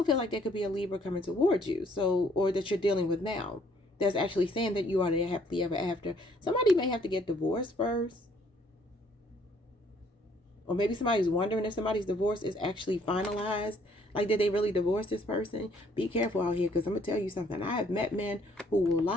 feel like there could be a Libra coming towards you. So, or that you're dealing with now. That's actually saying that you are the happily ever after. Somebody may have to get divorced first. Or maybe somebody's wondering if somebody's divorce is actually finalized. Like, did they really divorce this person? Be careful out here, because I'm going to tell you something. I have met men who will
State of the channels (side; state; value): both; normal; correlation 0.63